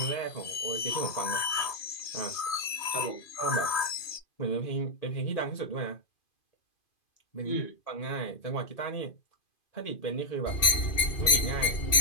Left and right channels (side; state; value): right; late; 2.5 ms